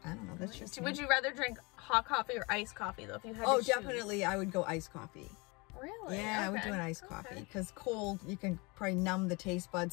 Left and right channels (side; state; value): right; quieter; 27.3 dB